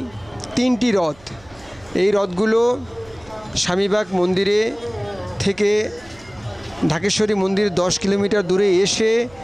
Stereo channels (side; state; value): right; noise; hum, 26 dB below the sound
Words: 3টি রথ, এই রথগুলো স্বামীবাগ মন্দিরে থেকে ঢাকেশ্বরী মন্দির 10 কিলোমিটার দূরে এসে